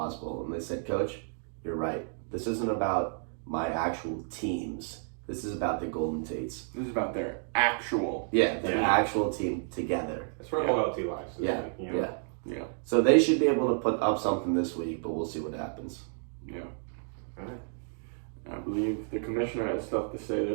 And they said, Coach, you're right. This isn't about my actual teams. This is about the Golden Tates. This is about their actual. Yeah, their actual team together. That's where loyalty lies. Yeah, you know? Yeah. So they should be able to put up something this week, but we'll see what happens. Yeah. All right. I believe the commissioner has stuff to say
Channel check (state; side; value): silent; left; 57 dB below the other